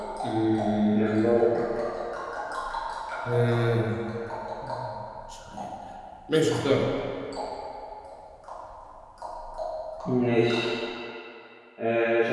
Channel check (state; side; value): identical; both; correlation 1.00